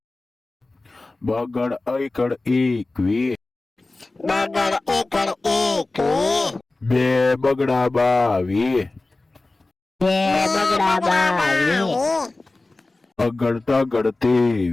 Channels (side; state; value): right; quieter; 3.1 dB